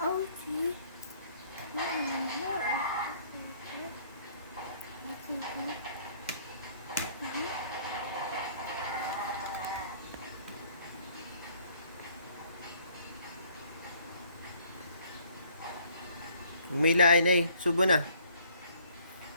Chico. Huwag mo hilain, eh. Subo na.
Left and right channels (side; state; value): both; inverted; correlation -0.61